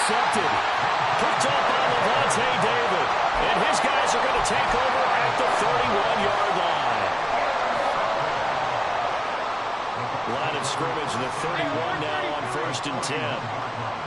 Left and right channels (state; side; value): identical; both; correlation 1.00